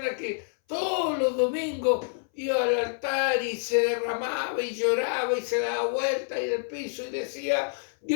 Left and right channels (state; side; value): silent; right; 60 dB below the other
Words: que todos los domingos iba al altar y se derramaba y lloraba y se daba vuelta y del piso y decía,